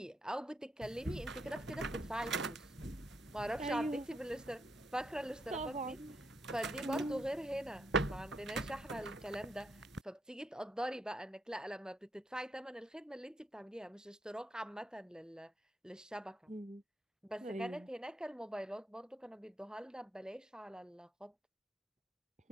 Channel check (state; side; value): normal; both; correlation 0.78